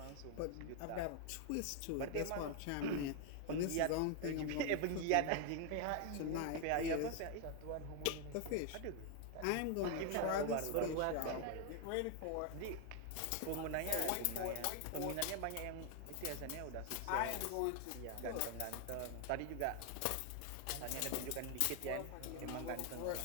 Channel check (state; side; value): different; both; correlation 0.00